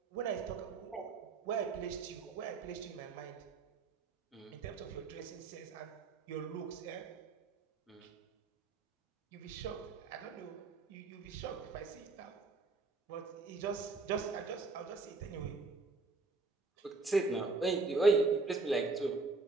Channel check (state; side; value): quieter; left; 3.9 dB